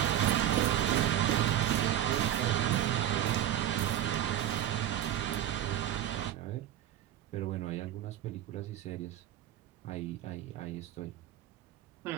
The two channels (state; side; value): quieter; left; 11.5 dB